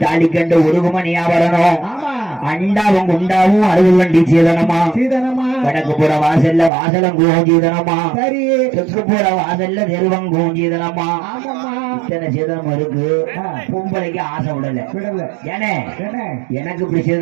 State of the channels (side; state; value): left; drops out; at 6.7 s